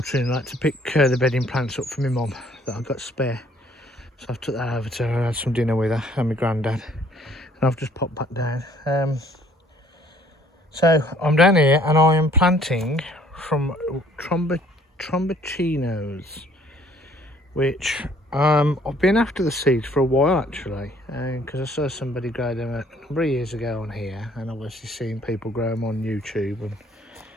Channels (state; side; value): normal; both; correlation 0.60